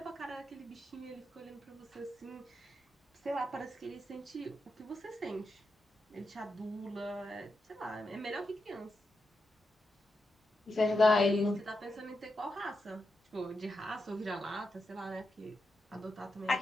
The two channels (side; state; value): both; normal; correlation 0.86